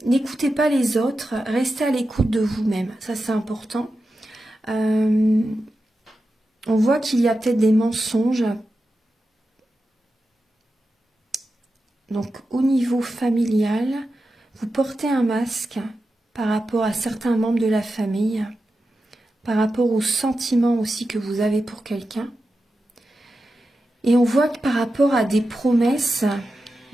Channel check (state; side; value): normal; both; correlation 0.91